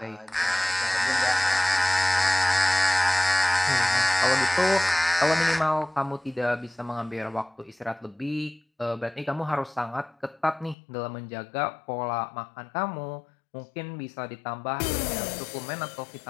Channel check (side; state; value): right; drops out; at 10.8 s